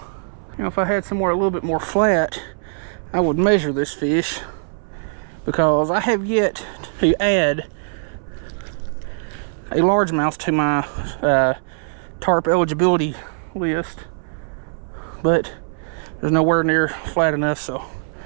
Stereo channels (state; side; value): silent; left; 65 dB below the other